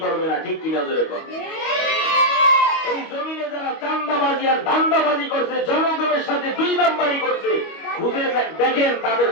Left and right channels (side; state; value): right; late; 25 ms